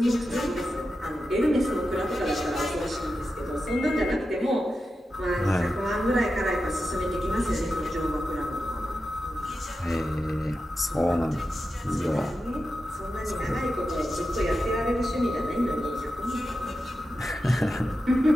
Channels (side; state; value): both; normal; correlation 0.90